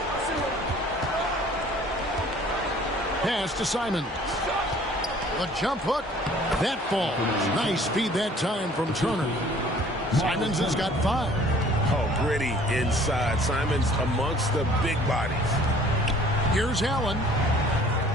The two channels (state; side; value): normal; both; correlation 0.53